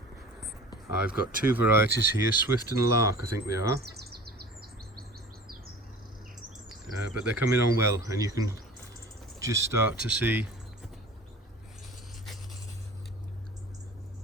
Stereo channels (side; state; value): both; normal; correlation 0.41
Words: I've got two varieties here, Swift and Lark I think they are, but they're coming on well, and you can just start to see